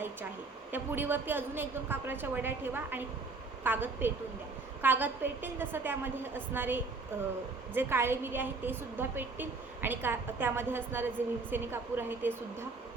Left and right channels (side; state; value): left; quieter; 3.9 dB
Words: आहे. त्या पुडीवरती अजून 1-2 कापराच्या वड्या ठेवा आणि कागद पेटून द्या. कागद पेटेल तसं त्यामध्ये असणारे जे काळे मिरी आहे ते सुद्धा पेटतील आणि त्यामध्ये असणारे जे भीमसेनी कापूर आहे ते सुद्धा